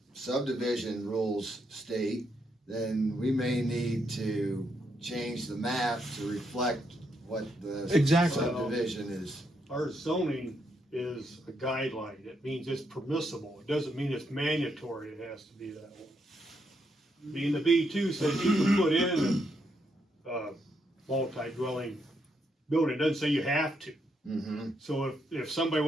subdivision rules state, then we may need to change the map to reflect what the Exactly. subdivision is. Our zoning is a guideline. It means it's permissible. It doesn't mean it's mandatory. It has to be that way. Being the B2 says you can put in a multi-dwelling building. It doesn't say you have to. Mm-hmm. So if somebody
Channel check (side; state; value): both; normal; correlation 0.78